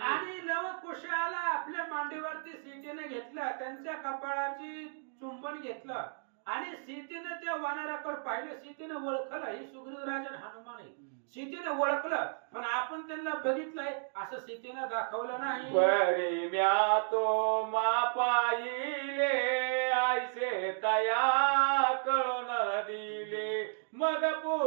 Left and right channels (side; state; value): left; silent; digital silence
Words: आणि लवकुशाला आपल्या मांडीवरती सीतेनं घेतलं, त्यांच्या कपाळाची चुंबन घेतलं आणि सीतेनं त्या वानराकडे पाहिलं. सीतेनं ओळखलं ही सुग्रीव राजन हनुमान आहे, सीतेनं ओळखलं पण आपण त्यांना बघितलंय असं सीतेनं दाखवलं नाही. बरी म्या तो मा पाहिले आयसे तया कळून दिले मग